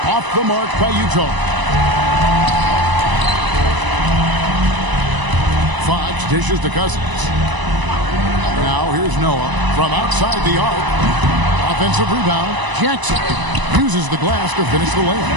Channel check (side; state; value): left; late; 1.0 ms